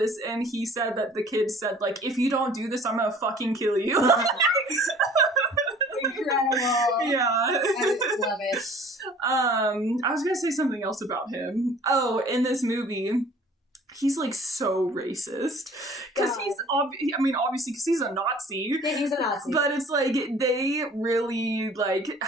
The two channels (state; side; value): normal; both; correlation 0.50